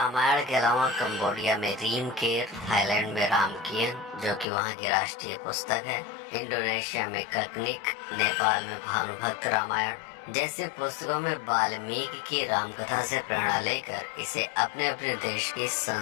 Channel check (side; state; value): right; drops out; at 4.5 s